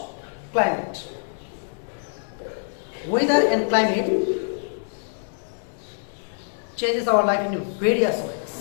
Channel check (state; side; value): silent; right; digital silence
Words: climate. Weather and climate changes our life in various